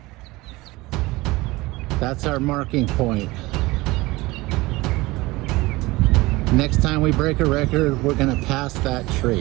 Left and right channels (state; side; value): quieter; left; 20.9 dB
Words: That's our marking point. Next time we break a record, we're gonna pass that